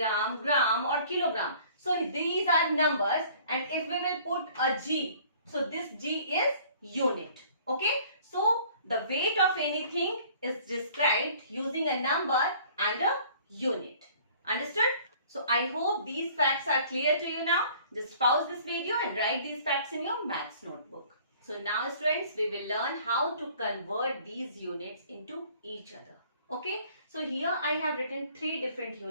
gram or kilogram. So these are numbers, and if we will put a G, so this G is unit. Okay. So the weight of anything is described using a number and a unit. Understood? So I hope these facts are clear to you now. Just pause this video and write these facts in your maths notebook. So now students, we will learn how to convert these units into each other. Okay. So here I have written three different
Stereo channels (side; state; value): both; inverted; correlation -0.53